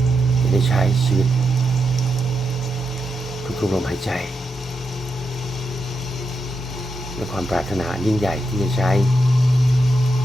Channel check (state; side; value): normal; both; correlation 0.85